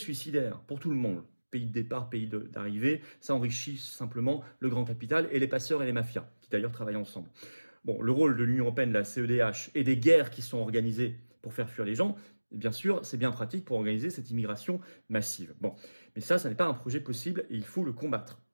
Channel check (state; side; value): inverted; both; correlation -1.00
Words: pour tout le monde. Pays de départ, pays d'arrivée, ça enrichit simplement le grand capital et les passeurs et les mafias, qui d'ailleurs travaillent ensemble. Bon, le rôle de l'Union européenne, de la CEDH et des guerres qui sont organisées pour faire fuir les gens, bien sûr, c'est bien pratique pour organiser cette immigration massive. Bon, mais ça n'est pas un projet possible et il faut le combattre.